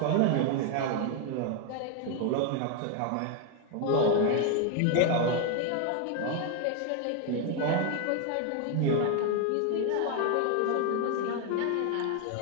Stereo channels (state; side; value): different; both; correlation 0.01